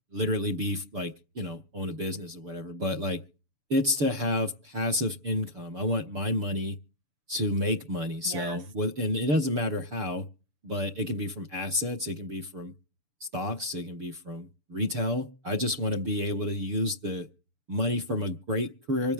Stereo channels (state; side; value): late; left; 6.9 ms